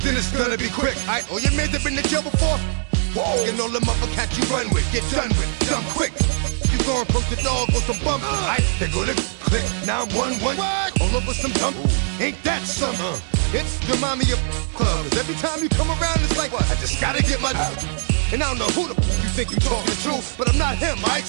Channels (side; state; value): left; silent; 65 dB below the other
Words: then it's gonna be quick. All your men have been to jail before. Whoa. And all them other cats you run with, get done with, done quick. You going from the dog or some bump? They go to click 911 all over some dump. Ain't that something? It's remind me of clubs. Every time you come around, it's like I just gotta get my. And I don't know who the you think you talking to, but I'm not him. I ain't